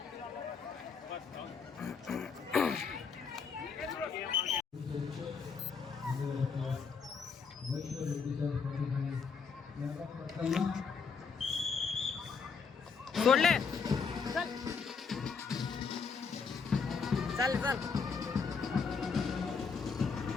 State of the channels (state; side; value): quieter; right; 5.5 dB